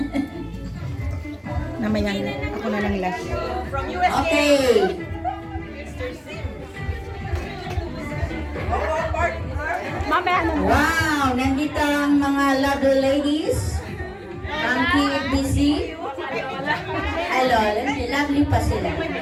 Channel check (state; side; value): identical; both; correlation 1.00